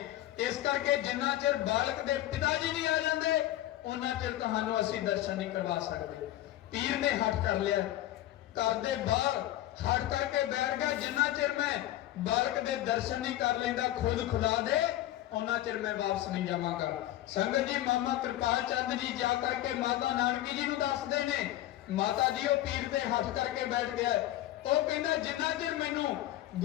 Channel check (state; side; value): quieter; right; 14.3 dB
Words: ਇਸ ਕਰਕੇ ਜਿੰਨਾ ਚਿਰ ਬਾਲਕ ਦੇ ਪਿਤਾ ਜੀ ਨਹੀਂ ਆ ਜਾਂਦੇ, ਉਹਨਾਂ ਚਿਰ ਤੁਹਾਨੂੰ ਅਸੀਂ ਦਰਸ਼ਨ ਨਹੀਂ ਕਰਵਾ ਸਕਦੇ। ਪੀਰ ਨੇ ਹੱਥ ਕਰ ਲਿਆ, ਘਰ ਦੇ ਬਾਹਰ ਹੱਥ ਕਰਕੇ ਬੈਠ ਗਿਆ, ਜਿੰਨਾ ਚਿਰ ਮੈਂ ਬਾਲਕ ਦੇ ਦਰਸ਼ਨ ਨਹੀਂ ਕਰ ਲੈਂਦਾ ਖੁਦ ਖੁਦਾ ਦੇ, ਉਹਨਾਂ ਚਿਰ ਮੈਂ ਵਾਪਸ ਨਹੀਂ ਜਾਵਾਂਗਾ। ਸੰਗਤ ਜੀ ਮਾਮਾ ਕਿਰਪਾਲ ਚੰਦ ਜੀ ਜਾ ਕਰਕੇ ਮਾਤਾ ਨਾਨਕੀ ਜੀ ਨੂੰ ਦੱਸਦੇ ਨੇ, ਮਾਤਾ ਜੀ ਉਹ ਪੀਰ ਦੇ ਹੱਥ ਕਰਕੇ ਬੈਠ ਗਿਆ। ਉਹ ਕਹਿੰਦਾ ਜਿੰਨਾ ਚਿਰ ਮੈਨੂੰ